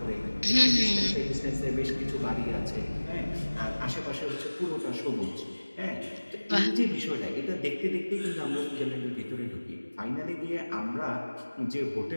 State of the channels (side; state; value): both; inverted; correlation -1.00